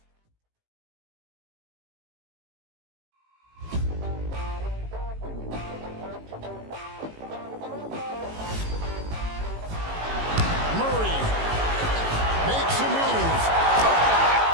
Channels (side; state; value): left; late; 18 ms